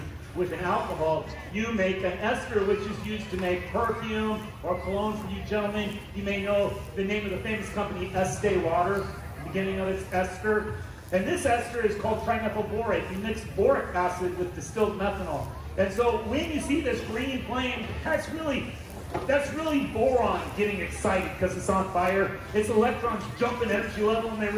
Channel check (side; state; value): both; identical; correlation 1.00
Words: with an alcohol, you make an ester, which is used to make perfume or cologne for you gentlemen. You may know the name of the famous company, Estee Lauder, the beginning of its ester. And this ester is called trimethylborate. You mix boric acid with distilled methanol. And so when you see this green flame, that's really boron getting excited because it's on fire. Its electrons jump in energy level and they